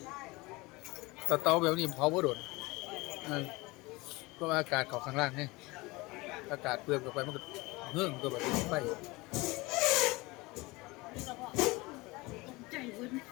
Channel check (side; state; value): right; quieter; 23.0 dB